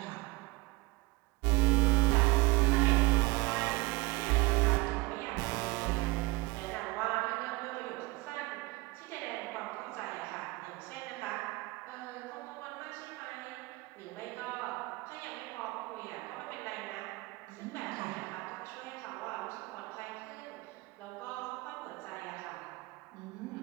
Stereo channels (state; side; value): quieter; left; 22.1 dB